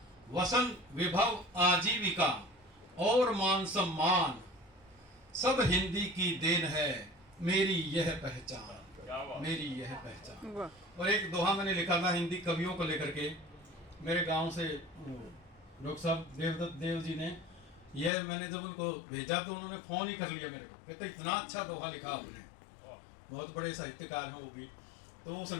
वसन विभव आजीविका और मान सम्मान, सब हिंदी की देन है मेरी यह पहचान, मेरी यह पहचान। और एक दोहा मैंने लिखा था हिंदी कवियों को लेकर के, मेरे गांव से डॉक्टर साहब देवदत्त देव जी ने, यह मैंने जब उनको भेजा तो उन्होंने फोन ही कर लिया मेरे को, कहते इतना अच्छा दोहा लिखा आपने, बहुत बड़े साहित्यकार हैं वो भी। तो वो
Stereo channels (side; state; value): right; drops out; at 18.1 s